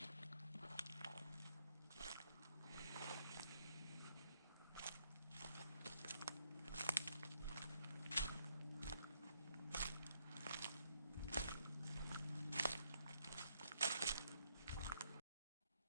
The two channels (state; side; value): inverted; both; correlation -0.74